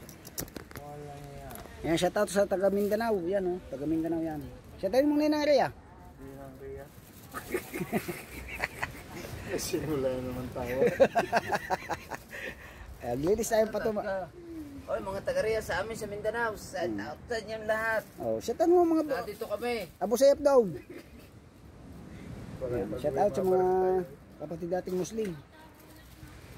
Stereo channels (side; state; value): both; identical; correlation 1.00